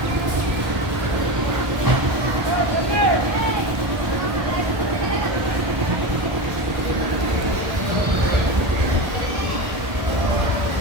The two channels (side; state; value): left; late; 1.3 ms